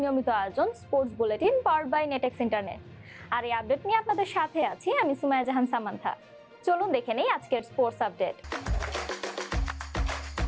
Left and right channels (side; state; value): both; identical; correlation 1.00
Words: আয়োজন sports bulletin powered by Netex internet. আর এই আপডেট নিয়ে আপনাদের সাথে আছি আমি সুমাইয়া জাহান সামান্থা। চলুন দেখে নেই আজকের স্পোর্টস আপডেট।